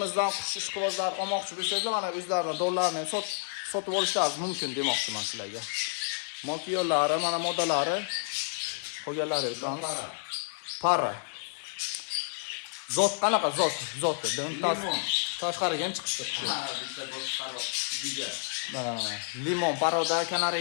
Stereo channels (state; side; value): silent; right; digital silence